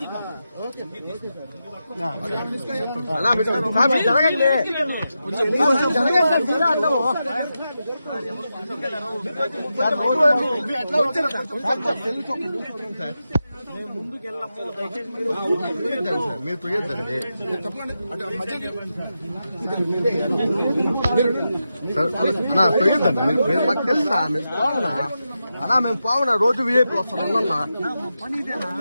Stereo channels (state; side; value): inverted; both; correlation -0.89